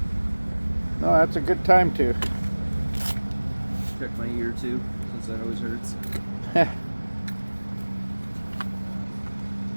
No, that's a good time to. Check my ear too, since that always hurts.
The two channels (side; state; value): both; inverted; correlation -1.00